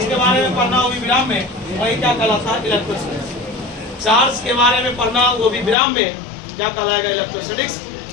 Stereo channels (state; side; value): drops out; right; at 5.8 s